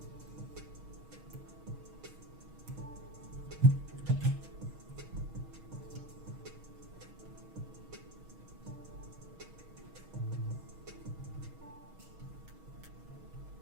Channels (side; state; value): left; late; 6.3 ms